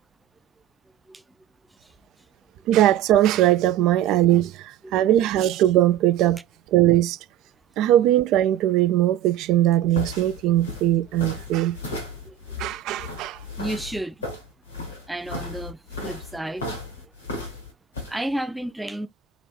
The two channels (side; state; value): left; quieter; 11.1 dB